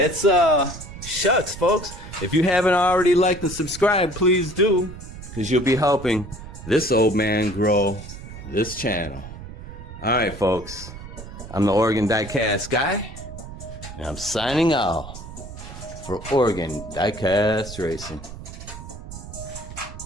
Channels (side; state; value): right; noise; rumble, 12 dB below the sound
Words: shucks, folks. If you haven't already liked and subscribed, please do, because you'll be helping this old man grow this channel. All right, folks. I'm the Oregon Diecast guy, and I'm signing off for Oregon Diecast Racing.